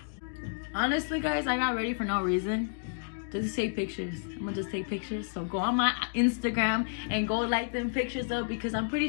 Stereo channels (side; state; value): right; silent; digital silence